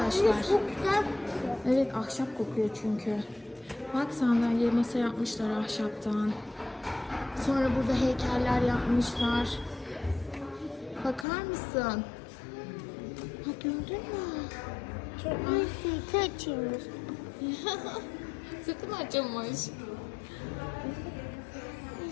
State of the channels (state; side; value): drops out; right; at 11.2 s